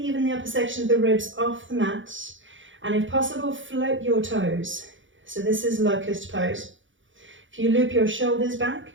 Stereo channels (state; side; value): late; left; 0.56 ms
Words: the upper section of the ribs off the mat, and if possible, float your toes. So this is Locust Pose. If you loop your shoulders back,